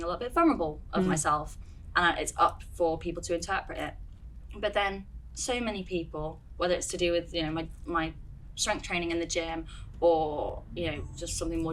a little bit vulnerable of myself, and it's up for people to interpret it. But then so many people, whether it's to do with, you know, my strength training in the gym, or, you know, just something more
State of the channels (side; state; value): both; identical; correlation 1.00